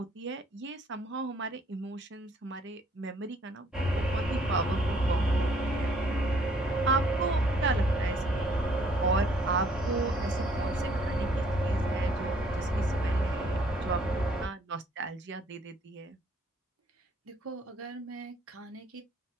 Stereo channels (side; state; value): both; normal; correlation 0.63